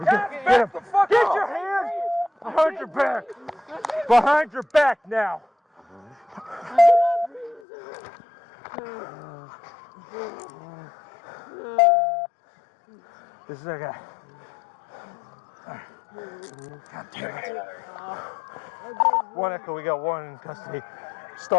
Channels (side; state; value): right; drops out; at 7.6 s